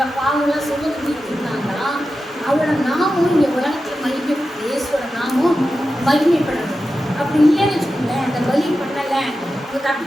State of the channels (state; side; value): normal; both; correlation 0.92